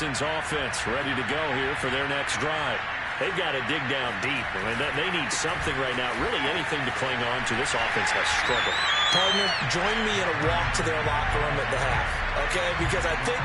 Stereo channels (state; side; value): identical; both; correlation 1.00